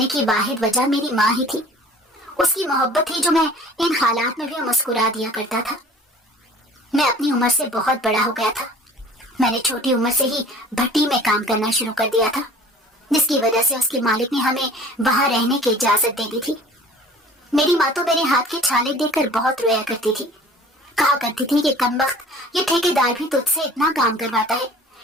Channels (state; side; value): normal; both; correlation 0.47